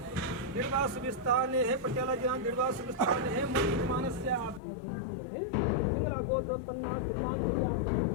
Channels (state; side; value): drops out; right; at 4.6 s